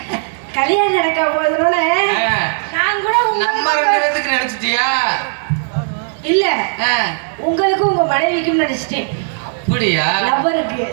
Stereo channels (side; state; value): left; silent; 69 dB below the other